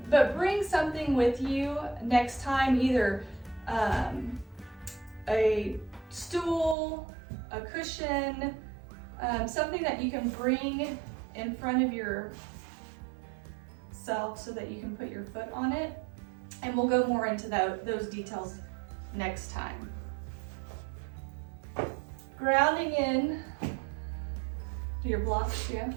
bring something with you next time, either a stool, a cushion, something that you can bring in front of yourself so that you can put your foot on it. And we'll go more into those details next time. Grounding in to your blocks, yeah.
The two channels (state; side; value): drops out; left; at 6.8 s